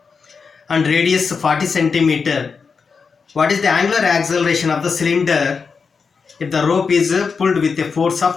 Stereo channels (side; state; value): right; quieter; 5.3 dB